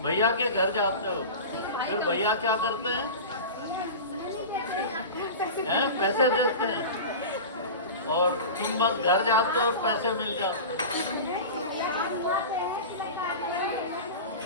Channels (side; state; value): both; inverted; correlation -0.30